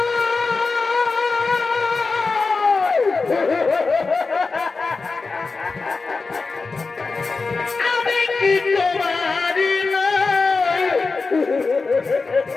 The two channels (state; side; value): quieter; right; 4.2 dB